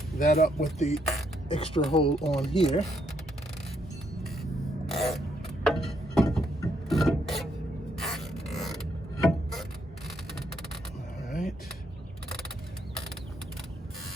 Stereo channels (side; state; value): both; normal; correlation 0.74